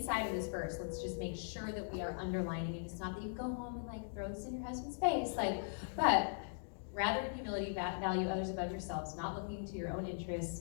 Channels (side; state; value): right; silent; digital silence